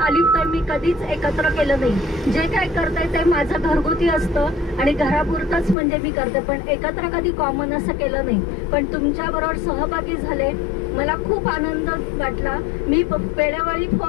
तर मी कधीच एकत्र केलं नाही. जे काय करते ते माझं घरगुती असतं आणि घरापुरतंच म्हणजे मी करते, पण एकत्र कधी कॉमन असं केलं नाही. पण तुमच्याबरोबर सहभागी झाले, मला खूप आनंद वाटला. मी वेळोवेळी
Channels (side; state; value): right; drops out; at 5.8 s